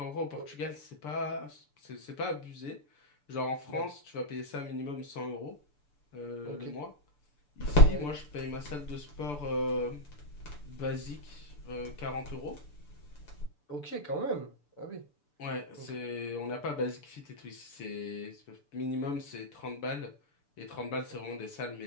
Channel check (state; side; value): late; right; 6.9 ms